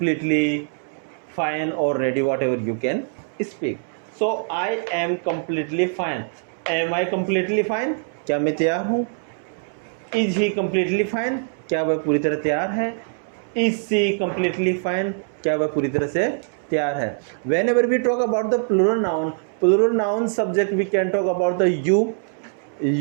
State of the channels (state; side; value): silent; left; 63 dB below the other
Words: fine और ready, whatever you can speak. So I am completely fine. Am I completely fine? क्या मैं तैयार हूँ? Is he completely fine? क्या वह पूरी तरह तैयार है? Is she completely fine? क्या वह पूरी तरह से तैयार है? Whenever we talk about the plural noun subject we can talk about the